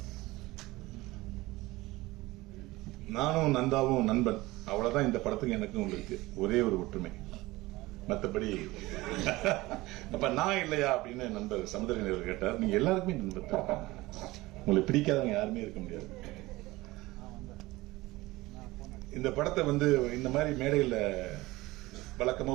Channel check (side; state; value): left; quieter; 19.8 dB